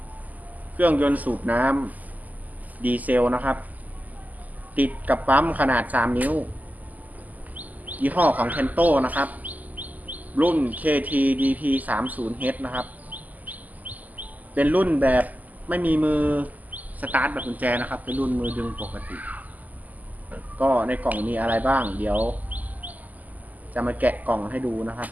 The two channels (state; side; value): late; left; 0.080 ms